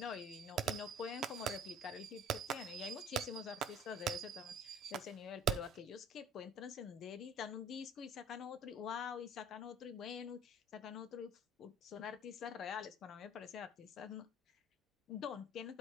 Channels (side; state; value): both; normal; correlation 0.50